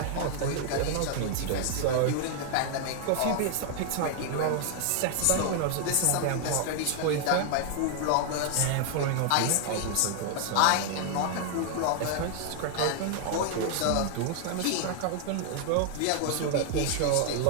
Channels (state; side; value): different; both; correlation 0.00